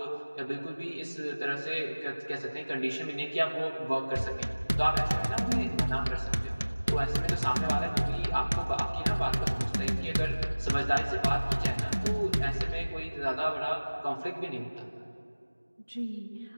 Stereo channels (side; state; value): both; inverted; correlation -1.00